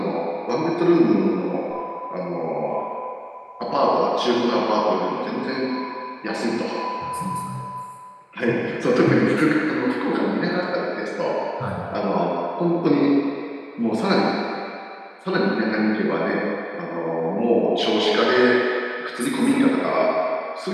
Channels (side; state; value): both; identical; correlation 1.00